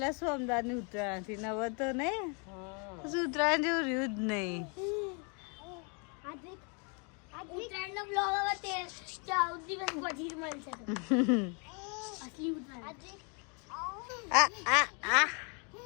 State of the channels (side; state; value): right; quieter; 35.9 dB